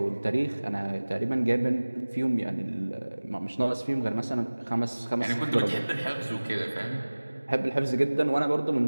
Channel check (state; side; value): inverted; both; correlation -1.00